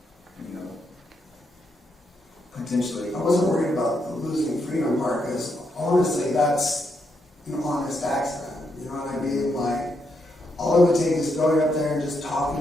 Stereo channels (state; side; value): normal; both; correlation 0.80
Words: you know, potentially. I wasn't worried about the losing freedom part, because honestly, that's an honest accident. You know what I mean? Like, all it would take is going up there and just